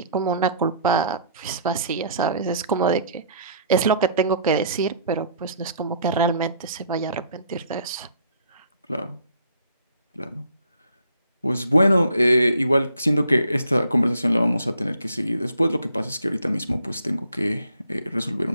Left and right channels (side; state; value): both; inverted; correlation -0.60